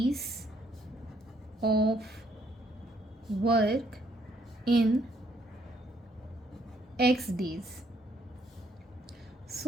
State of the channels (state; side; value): normal; both; correlation 0.69